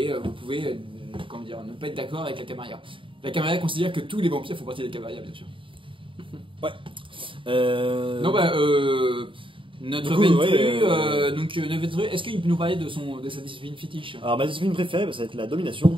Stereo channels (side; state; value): left; late; 0.25 ms